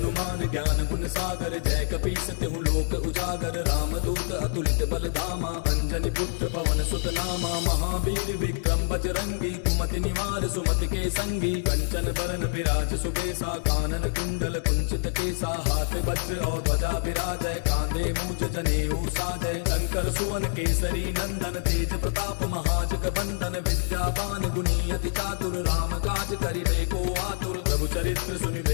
ज्ञान गुण सागर जय कपीस तिहु लोक उजागर रामदूत अतुलित बल धामा अंजनी पुत्र पवन सुत नामा महावीर विक्रम बजरंगी कुमति निवार सुमति के संगी कंचन बरन विराज सुबेसा कानन कुंडल कुंचित केसा हाथ वज्र और ध्वजा विराजय कांधे मूंज जनेऊ साजय शंकर सुवन केसरी नंदन तेज प्रताप महाजग बंदन विद्यावान गुणी अति चातुर राम काज करिबे को आतुर प्रभु चरित्र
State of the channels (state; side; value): silent; right; digital silence